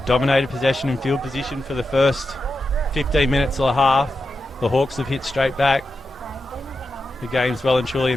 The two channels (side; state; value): both; normal; correlation 0.89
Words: dominated possession and field position for the first 15 minutes of the half. The Hawks have hit straight back. The game's well and truly